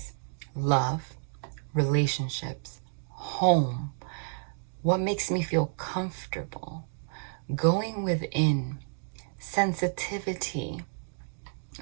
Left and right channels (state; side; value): silent; left; digital silence